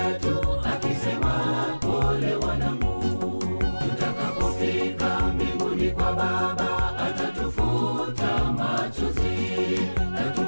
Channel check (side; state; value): both; inverted; correlation -1.00